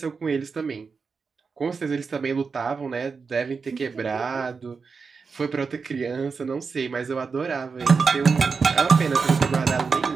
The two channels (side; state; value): left; quieter; 5.1 dB